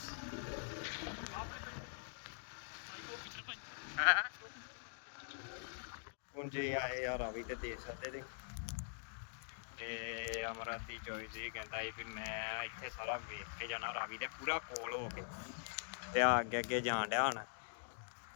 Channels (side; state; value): right; silent; digital silence